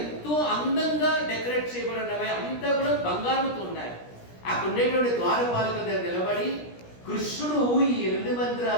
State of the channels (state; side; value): late; right; 17 ms